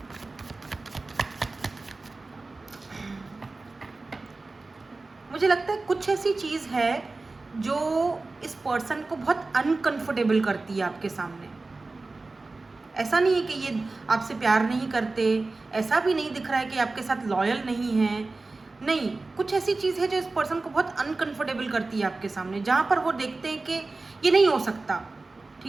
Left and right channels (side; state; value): left; quieter; 3.5 dB